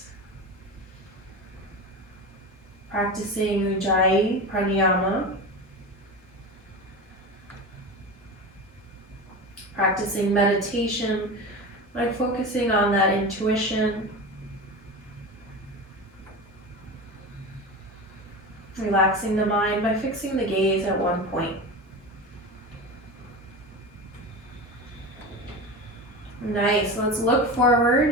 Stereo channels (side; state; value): both; normal; correlation 0.27